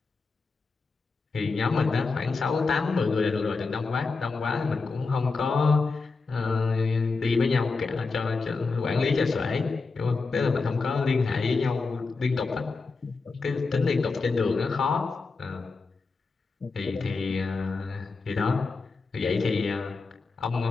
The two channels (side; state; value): right; quieter; 4.2 dB